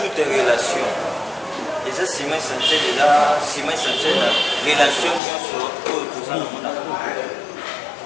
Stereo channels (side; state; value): right; drops out; at 5.2 s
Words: toute relation. Et ça, ciment essentiel de la relation pour tout ça dans mon amour.